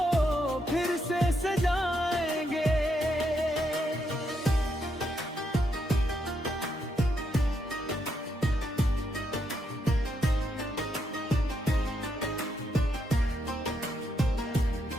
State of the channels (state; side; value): normal; both; correlation 0.79